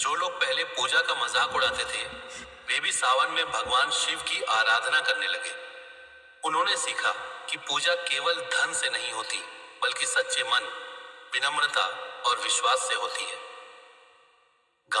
लोग पहले पूजा का मजाक उड़ाते थे, वे भी सावन में भगवान शिव की आराधना करने लगे। उन्होंने सीखा कि पूजा केवल धन से नहीं होती, बल्कि सच्चे मन, विनम्रता और विश्वास से होती है।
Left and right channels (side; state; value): both; identical; correlation 1.00